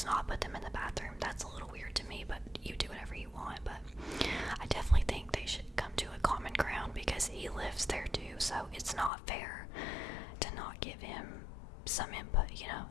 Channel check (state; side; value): drops out; right; at 9.1 s